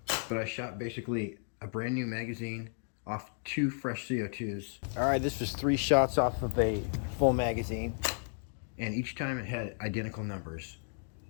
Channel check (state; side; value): silent; right; 55 dB below the other